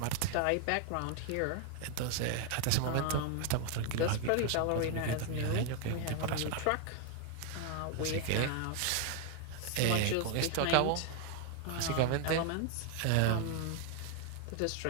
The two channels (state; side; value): different; both; correlation 0.00